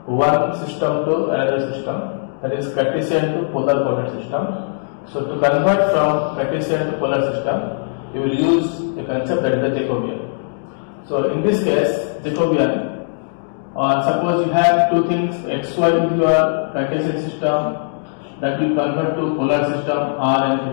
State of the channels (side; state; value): right; silent; digital silence